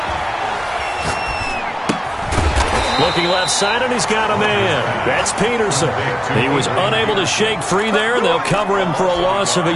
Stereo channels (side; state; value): both; identical; correlation 1.00